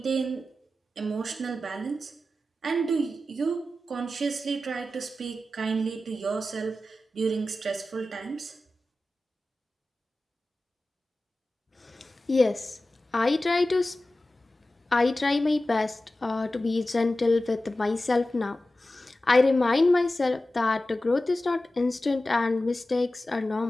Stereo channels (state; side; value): normal; both; correlation 0.94